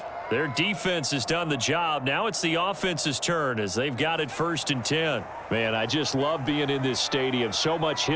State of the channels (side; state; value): both; identical; correlation 1.00